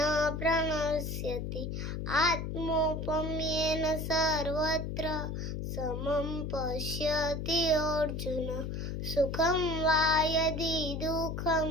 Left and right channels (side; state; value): left; noise; hum, 4 dB below the sound